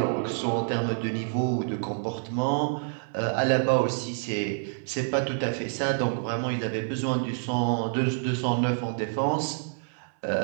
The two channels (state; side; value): silent; left; 60 dB below the other